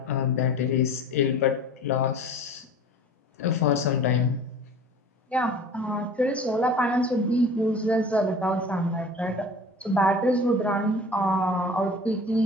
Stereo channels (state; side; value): normal; both; correlation 0.42